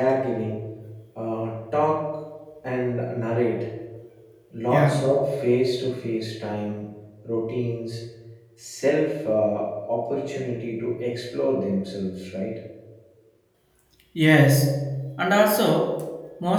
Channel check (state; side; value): identical; both; correlation 1.00